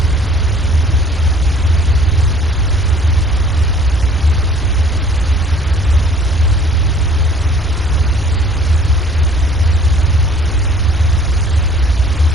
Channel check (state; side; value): normal; both; correlation 0.54